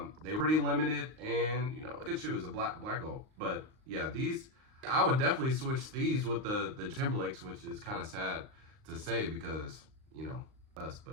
they were pretty limited, and you know, good shoes, a black gold. But yeah, these, I would definitely switch these with the Timberlakes, which is kind of sad to say because, you know, us,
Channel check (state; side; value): late; left; 38 ms